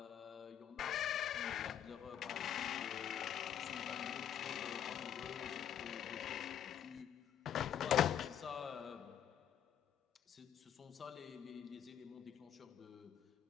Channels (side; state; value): right; quieter; 9.6 dB